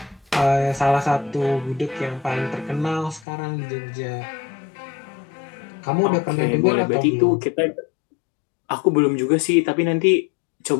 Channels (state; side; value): drops out; right; at 3.2 s